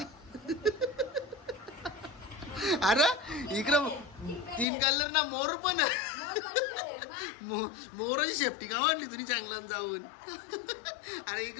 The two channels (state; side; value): drops out; right; at 4.7 s